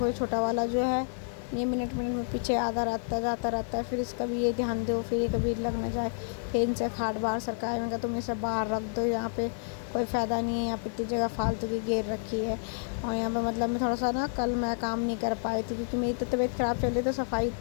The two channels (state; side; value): silent; right; 58 dB below the other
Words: ये छोटा वाला जो है, ये मिनट मिनट में पीछे आधा जाता रहता है। फिर इसका भी ये ध्यान दो, फिर ये कभी लग ना जाए। फिर इनसे खाट बाहर सरकाए, मैं कहा तुम इसे बाहर रख दो, यहाँ पे कोई फ़ायदा नहीं है, यहाँ पे इतनी जगह फालतू की घेर रखी है। और यहाँ पे मतलब मैं थोड़ा सा ना, कल मैं काम नहीं कर पाई थी क्योंकि मेरी तो तबीयत ख़राब चल रही, तो सफाई